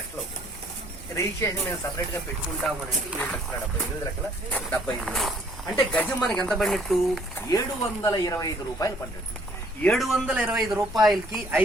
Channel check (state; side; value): normal; both; correlation 0.61